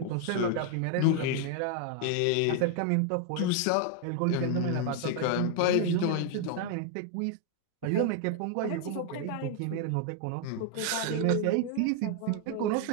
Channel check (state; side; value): different; both; correlation 0.00